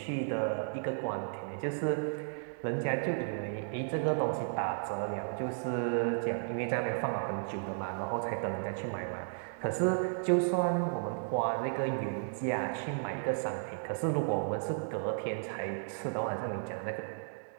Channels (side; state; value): left; silent; digital silence